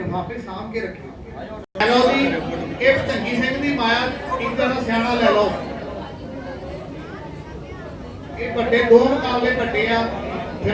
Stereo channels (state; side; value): identical; both; correlation 1.00